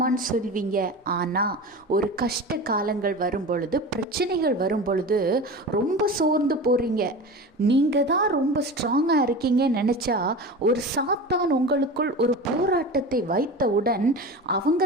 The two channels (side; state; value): both; normal; correlation 0.31